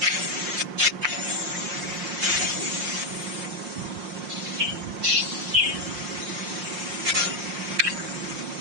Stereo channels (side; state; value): left; late; 5.6 ms